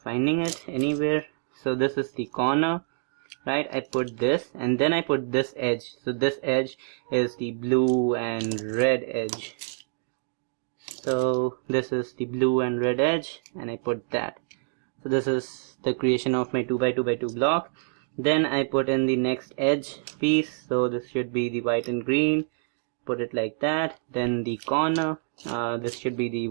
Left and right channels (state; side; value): silent; left; 60 dB below the other